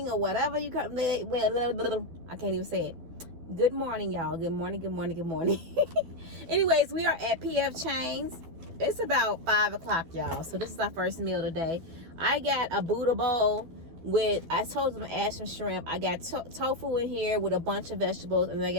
or whatever you come. Well, I can't even say it. Good morning, y'all. Good morning. Anyways, we are at PF Chains. It's about 5 o'clock, y'all. So this is our first meal today. I got a Buddha bowl with, I told them to add some shrimp. I got tofu in here with a bunch of vegetables, and then I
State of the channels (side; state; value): left; late; 12 ms